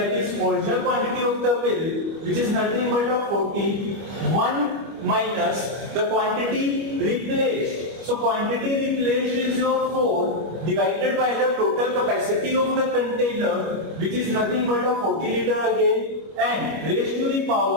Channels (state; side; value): late; left; 25 ms